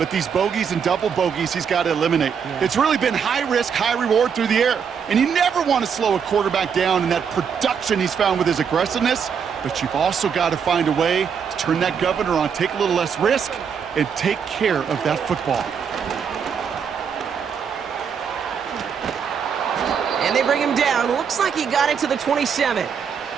these bogeys and double bogeys he's got to eliminate. Yeah. It's really been high risk, high reward through the air. And you never want to slow a quarterback down in that production he's found with his aggressiveness, but you've also got to find a way to turn that governor on, take a little less risk, and take care of that football. And they bring him down. Looks like he got it to the 27.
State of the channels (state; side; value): quieter; left; 7.0 dB